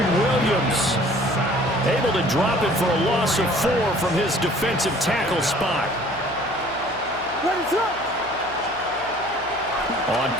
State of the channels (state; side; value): noise; right; hum, 21 dB below the sound